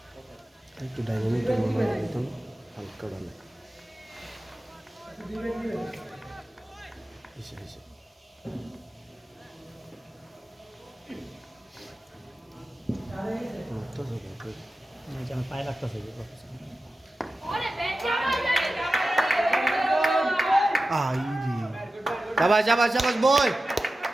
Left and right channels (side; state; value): both; normal; correlation 0.94